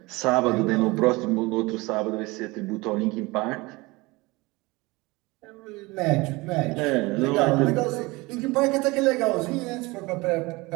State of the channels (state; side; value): quieter; left; 23.2 dB